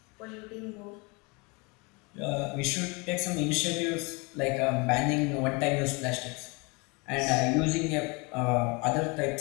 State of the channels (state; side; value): quieter; right; 28.5 dB